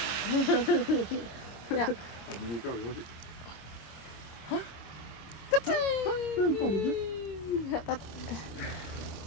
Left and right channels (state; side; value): late; right; 25 ms